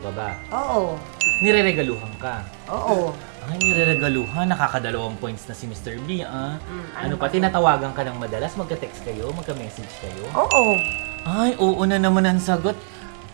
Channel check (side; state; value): left; silent; 64 dB below the other